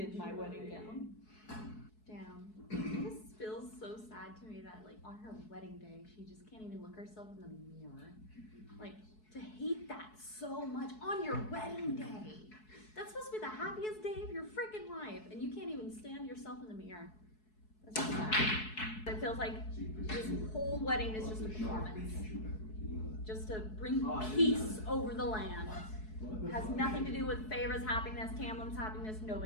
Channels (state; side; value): late; right; 4.7 ms